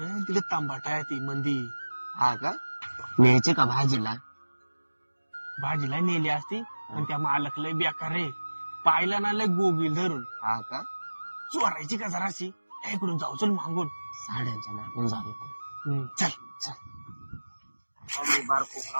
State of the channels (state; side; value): inverted; both; correlation -1.00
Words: तिला तांबाटा आहे ती मंदी. हा का न्यायचे का भाजीला? भाजीला नेली असती पण त्या मालक लय बेकार रे. पाहिला ना लय गोगील धरून. हा का चोरायची का जराशी. इकडून जाऊ चल मागून. साड्यांच्या मागून जाऊ नको. चल मी बारको